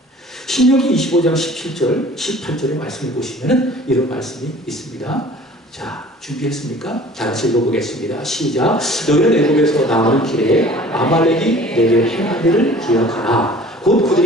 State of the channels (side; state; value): both; normal; correlation 0.48